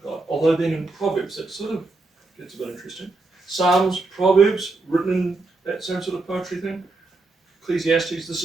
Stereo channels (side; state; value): left; quieter; 3.3 dB